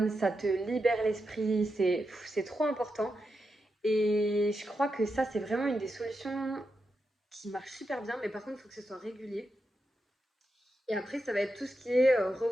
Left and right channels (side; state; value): both; normal; correlation 0.87